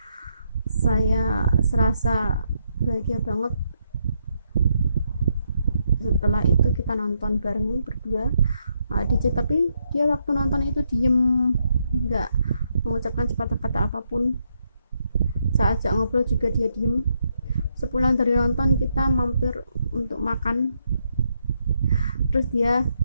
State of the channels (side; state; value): both; inverted; correlation -0.78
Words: Saya serasa bahagia banget. Setelah itu kita nonton bareng berdua AADC, tapi dia waktu nonton itu diem, nggak mengucapkan sepatah kata apapun. Saya ajak ngobrol juga dia diem. Sepulang dari nonton kita mampir untuk makan, terus dia